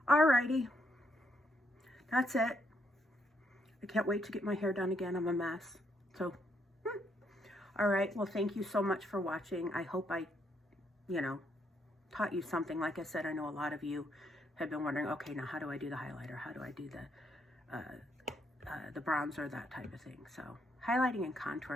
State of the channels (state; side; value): normal; both; correlation 0.74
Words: alrighty, that's it. I can't wait to get my hair done again. I'm a mess. So, all right. Well, thank you so much for watching. I hope I, taught you something. Like I said, I know a lot of you have been wondering, okay, now how do I do the highlighter? How do I do the bronzer, that type of thing? So highlighting and